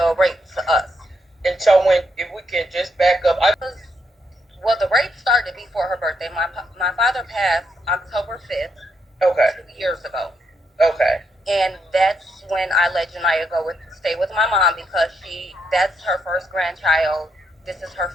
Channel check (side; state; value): both; normal; correlation 0.78